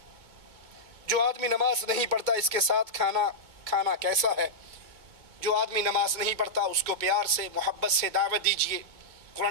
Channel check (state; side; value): late; left; 2.2 ms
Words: جو آدمی نماز نہیں پڑھتا اس کے ساتھ کھانا کیسا ہے؟ جو آدمی نماز نہیں پڑھتا اس کو پیار سے محبت سے دعوت دیجیے،